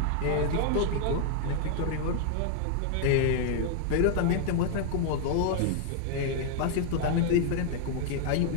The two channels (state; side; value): different; both; correlation 0.00